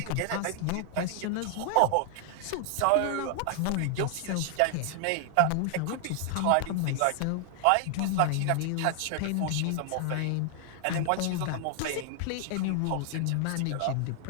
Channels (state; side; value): different; both; correlation 0.00